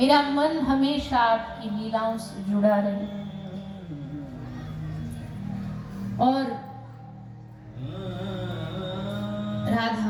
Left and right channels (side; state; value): both; identical; correlation 1.00